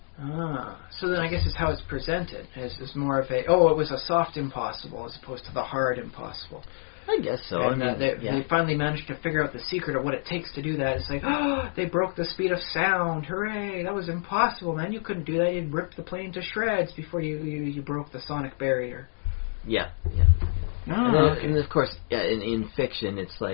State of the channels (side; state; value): right; silent; digital silence